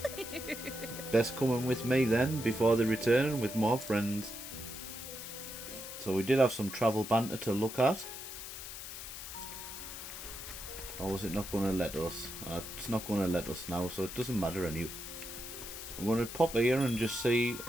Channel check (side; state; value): left; noise; hiss, 9 dB below the sound